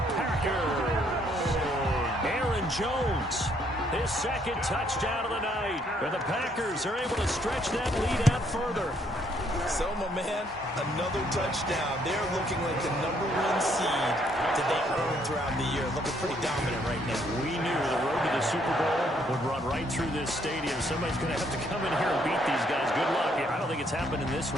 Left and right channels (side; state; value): both; normal; correlation 0.69